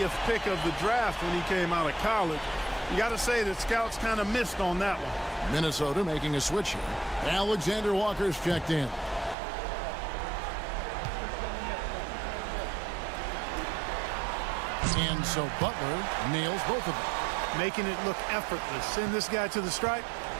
pick of the draft when he came out of college. You got to say that scouts kind of missed on that one. Minnesota making a switch here. Alexander Walker's checked in. And so Butler nails both of them. Making it look effortless. Send this guy to the stripe.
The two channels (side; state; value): left; drops out; at 9.3 s